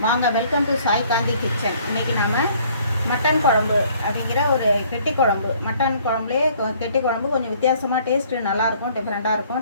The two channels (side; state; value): both; inverted; correlation -0.59